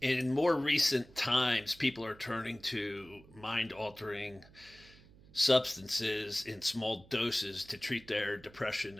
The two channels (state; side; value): noise; right; hum, 23 dB below the sound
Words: In more recent times, people are turning to mind altering substances in small doses to treat their depression